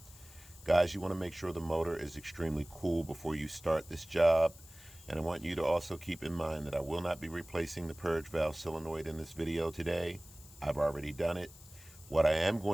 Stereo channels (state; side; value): noise; left; hiss, 21 dB below the sound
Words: Guys, you want to make sure the motor is extremely cool before you start this job. And I want you to also keep in mind that I will not be replacing the purge valve solenoid in this video today. I've already done it. What I am